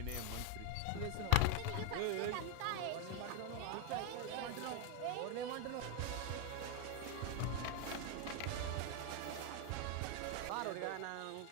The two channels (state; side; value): different; both; correlation 0.01